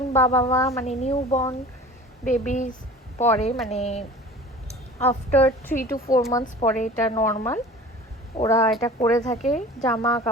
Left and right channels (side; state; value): both; normal; correlation 0.41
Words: বাবা মা মানে নিউ বর্ন বেবিজ পরে, মানে আফটার 3 to 4 months পরে এটা নর্মাল। ওরা এটা করে থাকে। জামা